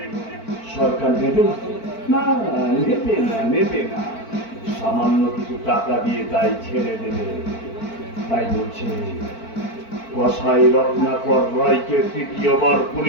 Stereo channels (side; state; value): right; late; 4.5 ms